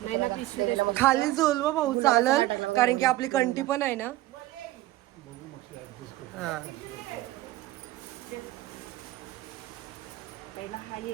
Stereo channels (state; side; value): quieter; left; 16.4 dB